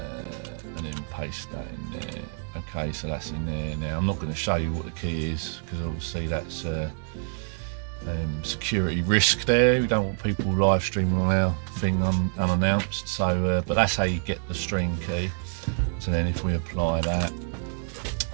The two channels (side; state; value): left; silent; 60 dB below the other